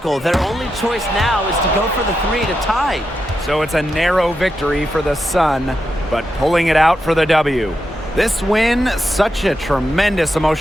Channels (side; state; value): both; normal; correlation 0.86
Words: Their only choice now is to go for the 3 to tie. So it's a narrow victory for the Sun, but pulling it out for the W. This win, such a tremendous